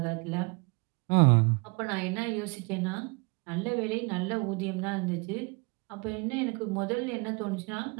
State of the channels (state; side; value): quieter; left; 29.8 dB